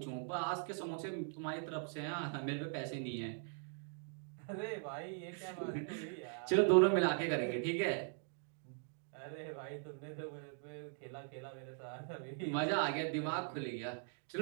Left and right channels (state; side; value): silent; left; 51 dB below the other